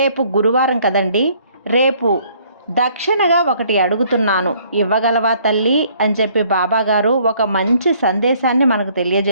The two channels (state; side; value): inverted; both; correlation -0.61